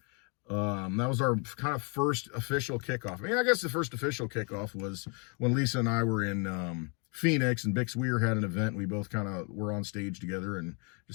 That was our kind of first official kickoff. I mean, I guess the first official kickoff was when Lisa and I were in Phoenix, and Bix Weir had an event. We both kind of were on stage together and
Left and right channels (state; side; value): quieter; right; 35.0 dB